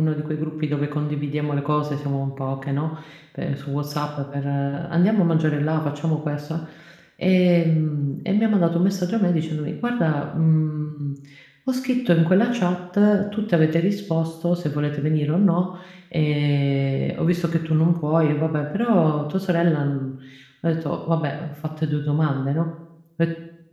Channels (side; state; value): both; identical; correlation 1.00